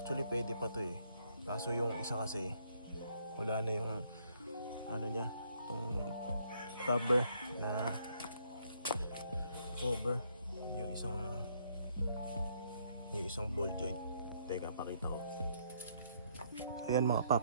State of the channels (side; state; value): both; inverted; correlation -0.69